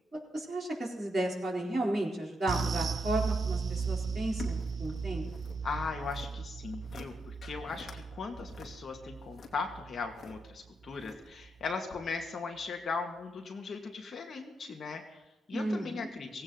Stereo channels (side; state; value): both; normal; correlation 0.82